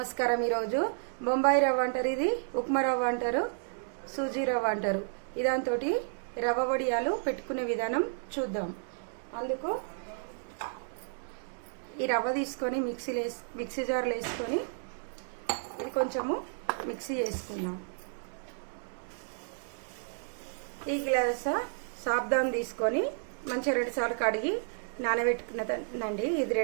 ఈరోజు బొంబాయి రవ్వ అంటారు, ఇది ఉప్మా రవ్వ అంటారు, సూజీ రవ్వ అంటారు. ఇదాంతో రవ్వ వడియాలు పెట్టుకునే విధానం చూద్దాం. అందుకు ఈ రవ్వ తీసుకొని మిక్సీ జార్లో వేసుకొని ఇది కొంచెము మిక్సీ చేసుకుందాం. ఈ గ్లాస్ సాబ్దాన్ తీసుకొని మంచిగా 2 సార్లు కడిగి నానబెట్టుకున్నదండి. ఇది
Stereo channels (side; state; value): left; silent; digital silence